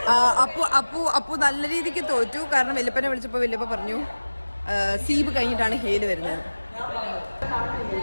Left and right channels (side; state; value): both; inverted; correlation -1.00